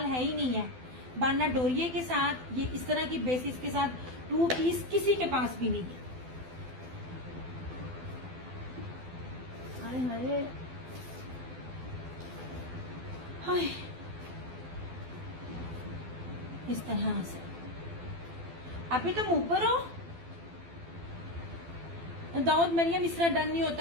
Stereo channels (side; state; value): left; late; 12 ms